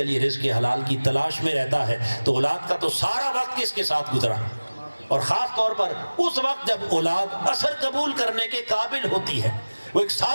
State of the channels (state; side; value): inverted; both; correlation -1.00